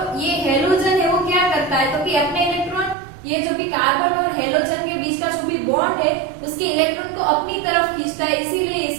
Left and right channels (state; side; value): drops out; left; at 3.0 s